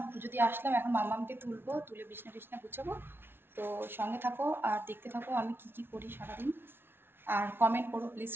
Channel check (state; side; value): late; left; 0.11 ms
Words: পুজো দিয়ে আসলাম, এখন মামামকে তুলবো, তুলে বিছনা টিছনা গুছাবো। তো সঙ্গে থাকো আর দেখতে থাকো আমি কি কি করি সারাদিন। আর কমেন্ট করো প্লিজ,